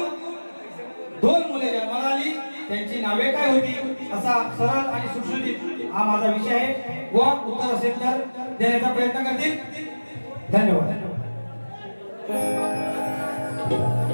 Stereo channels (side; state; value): both; inverted; correlation -1.00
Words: 2 मुले जन्माला आली. त्यांची नावे काय होती? असा सरळ आणि सुटसुटीत हा माझा विषय आहे. व उत्तर असेल तर देण्याचा प्रयत्न करतील. धन्यवाद.